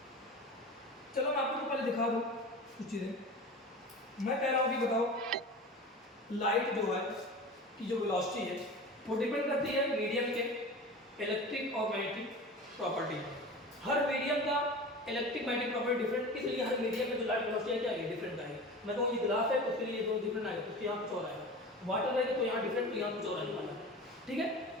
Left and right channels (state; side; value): normal; both; correlation 0.34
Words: चलो मैं आपको तो पहले दिखा दूँ कुछ चीज़ें। मैं कह रहा हूँ कि बताओ लाइट जो है की जो वेलोसिटी है वो डिपेंड करती है मीडियम के इलेक्ट्रिक और मैग्नेटिक प्रॉपर्टी। हर मीडियम का इलेक्ट्रिक मैग्नेटिक प्रॉपर्टी डिफरेंट, इसलिए हर मीडियम में जो लाइट वेलोसिटी है क्या है डिफरेंट आएगी। मैं कहूँ ये ग्लास है तो उसके लिए दो डिफरेंट आएगा, उसके यहाँ कुछ और आएगा। वाटर रहेगा तो यहाँ डिफरेंट, तो यहाँ कुछ और आने वाला है, ठीक है।